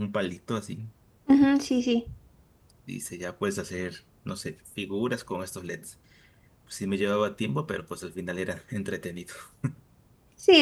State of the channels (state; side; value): identical; both; correlation 1.00